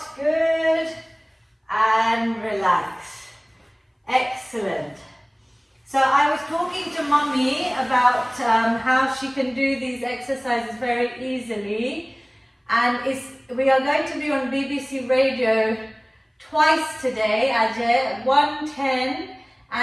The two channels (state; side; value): identical; both; correlation 1.00